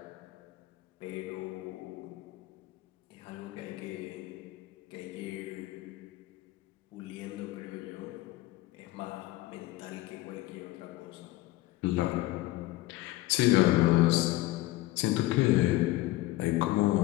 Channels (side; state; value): right; quieter; 17.8 dB